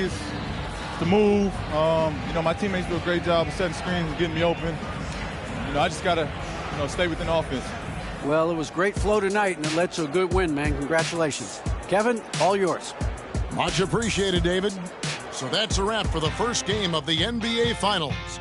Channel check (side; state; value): both; identical; correlation 1.00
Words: to move. You know, my teammates do a great job of setting screens and getting me open. You know, I just got to, you know, stay within offense. Well, it was great flow tonight, and it led to a good win, man. Congratulations. Kevin, all yours. Much appreciated, David. So that's a wrap for the first game of the NBA Finals.